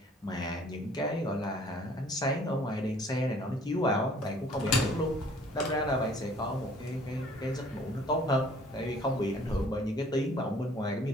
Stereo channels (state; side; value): normal; both; correlation 0.56